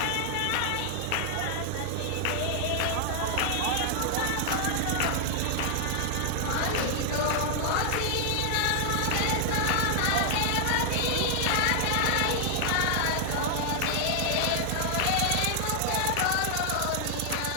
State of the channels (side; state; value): both; different; correlation 0.00